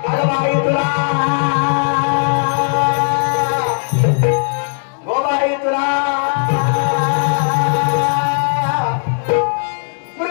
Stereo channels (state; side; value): silent; right; digital silence